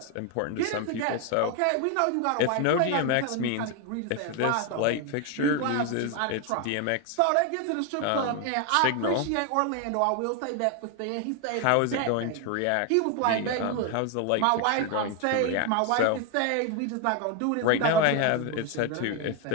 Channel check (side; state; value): both; different; correlation 0.01